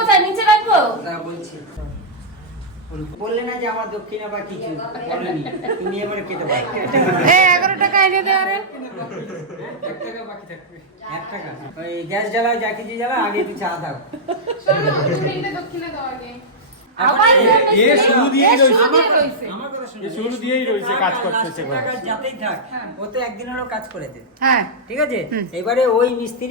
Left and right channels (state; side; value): normal; both; correlation -0.10